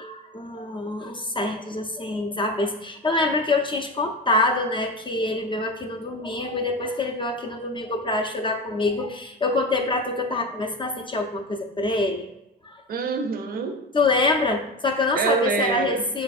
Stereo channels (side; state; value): both; normal; correlation 0.25